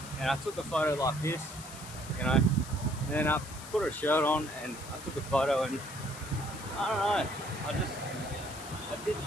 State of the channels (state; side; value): noise; left; hiss, 14 dB below the sound